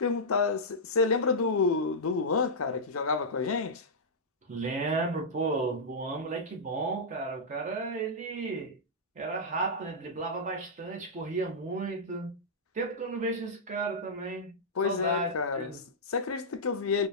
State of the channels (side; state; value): both; normal; correlation -0.11